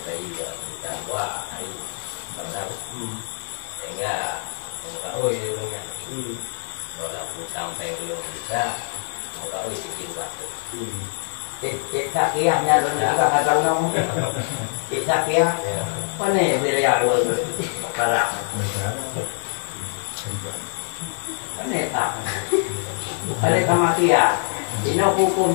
saya juga kita buat hari mana. Sehingga kau nya. Kalau aku sampai gunung kita, kau sikit waktu. Cik sakiahnya dan juga nggak tahu nama. Cik sakiah, mana wilayah luar barat? Mana tak? Ada sama kia, ini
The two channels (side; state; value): right; silent; digital silence